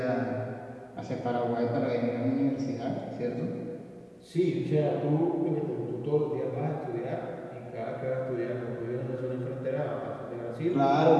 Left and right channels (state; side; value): identical; both; correlation 1.00